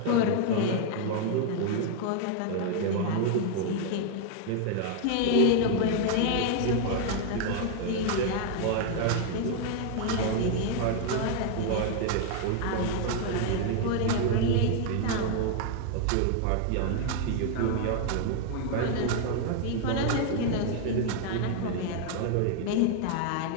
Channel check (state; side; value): different; both; correlation 0.00